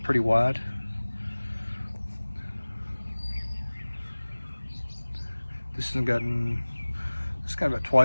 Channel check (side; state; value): both; inverted; correlation -1.00